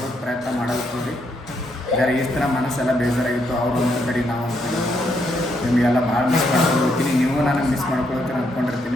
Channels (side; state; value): both; normal; correlation 0.76